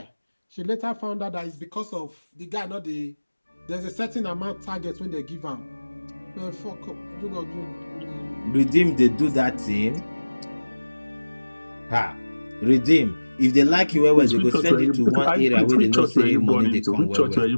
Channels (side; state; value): both; inverted; correlation -1.00